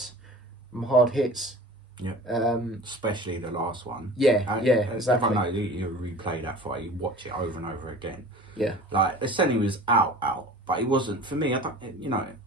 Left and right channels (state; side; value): normal; both; correlation 0.41